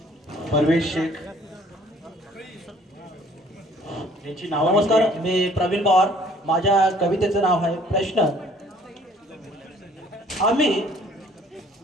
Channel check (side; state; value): both; normal; correlation 0.58